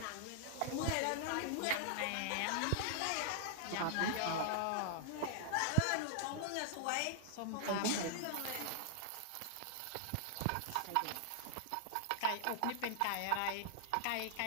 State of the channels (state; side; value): different; both; correlation 0.00